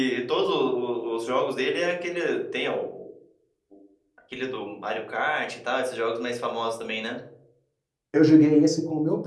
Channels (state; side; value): identical; both; correlation 1.00